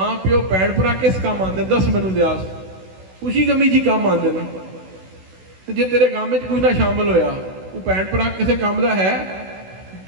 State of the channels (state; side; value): late; left; 16 ms